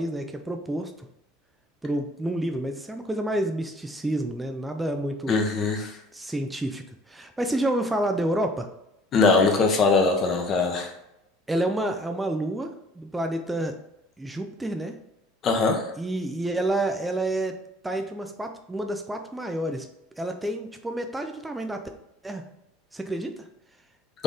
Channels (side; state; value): both; normal; correlation 0.56